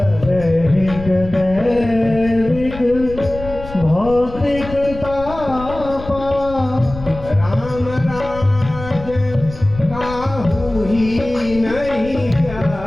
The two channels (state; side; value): noise; left; rumble, 13 dB below the sound